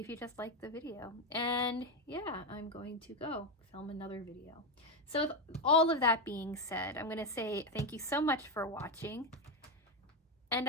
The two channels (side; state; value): both; normal; correlation 0.10